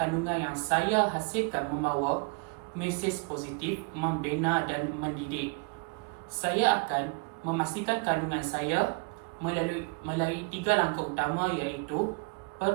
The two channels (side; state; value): left; quieter; 31.4 dB